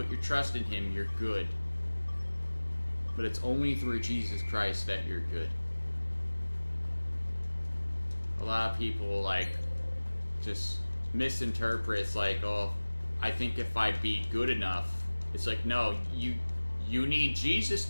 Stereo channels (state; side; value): inverted; both; correlation -1.00